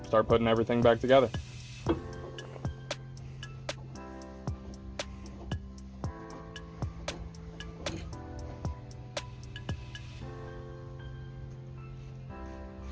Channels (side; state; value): both; identical; correlation 1.00